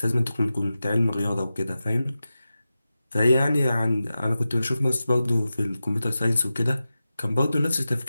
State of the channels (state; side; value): inverted; both; correlation -0.93